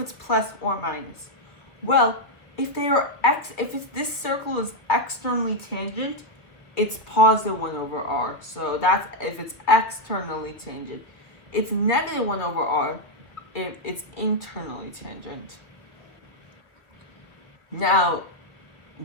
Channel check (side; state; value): right; late; 2.4 ms